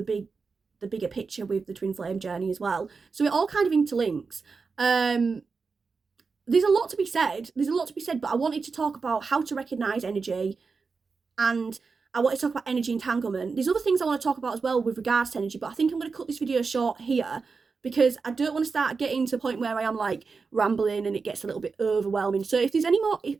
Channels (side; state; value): left; quieter; 4.8 dB